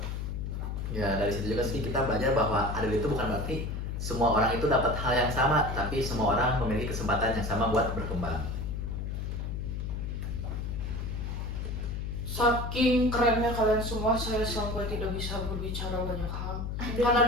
Ya, dari situ juga sih kita belajar bahwa adil itu bukan berarti semua orang itu dapat hal yang sama, tapi semua orang memiliki kesempatan yang sama buat berkembang. Saking kerennya kalian semua, saya sampai tidak bisa berbicara banyak hal.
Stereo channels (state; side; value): noise; left; hum, 3 dB below the sound